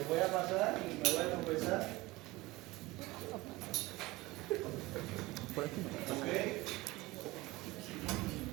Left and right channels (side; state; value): left; quieter; 20.5 dB